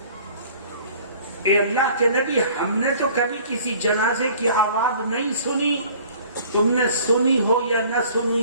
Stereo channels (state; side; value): inverted; both; correlation -0.51